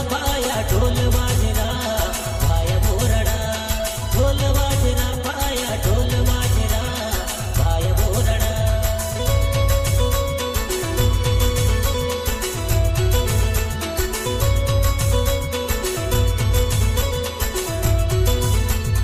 पाया ढोल वाजना पाया बोरडा ढोल वाजना पाया ढोल वाजना पाया बोरडा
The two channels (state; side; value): identical; both; correlation 1.00